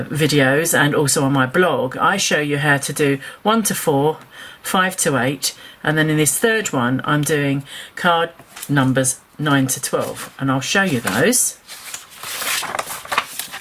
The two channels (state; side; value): identical; both; correlation 1.00